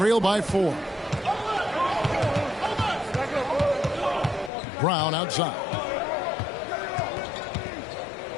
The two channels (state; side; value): drops out; right; at 4.5 s